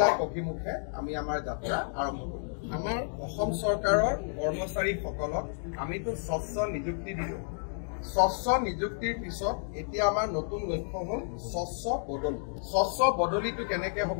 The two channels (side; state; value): right; silent; digital silence